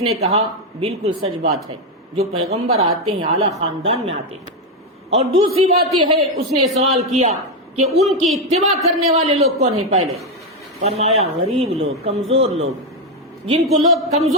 کہا بالکل سچ بات ہے، جو پیغمبر آتے ہیں اعلیٰ خاندان میں آتے ہیں۔ اور دوسری بات یہ ہے، اس نے سوال کیا کہ ان کی اتباع کرنے والے لوگ کون ہیں پہلے؟ فرمایا غریب لوگ، کمزور لوگ، جن کو لوگ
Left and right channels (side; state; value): both; normal; correlation 0.06